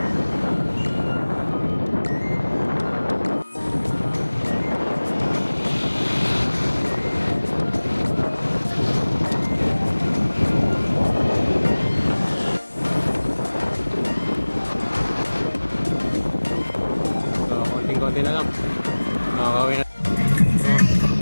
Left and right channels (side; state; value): both; inverted; correlation -1.00